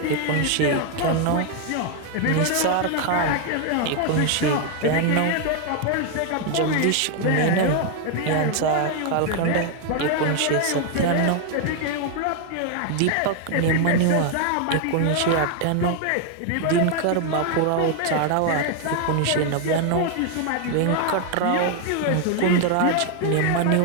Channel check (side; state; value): both; different; correlation 0.00